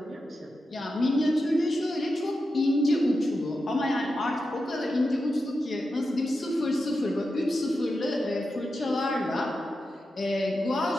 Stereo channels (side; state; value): both; normal; correlation 0.89